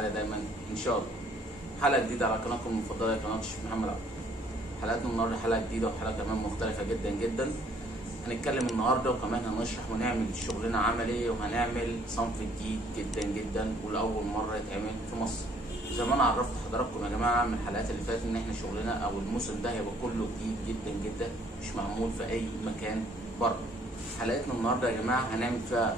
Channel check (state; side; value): normal; both; correlation 0.62